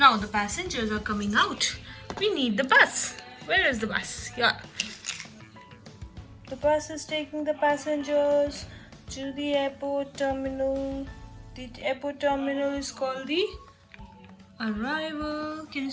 the passengers are coming out. We need the bus. Where is the bus? Yeah. The bus is taking the passengers to the airport terminal. The airport terminal is called the arrival. Can you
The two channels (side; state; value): both; identical; correlation 1.00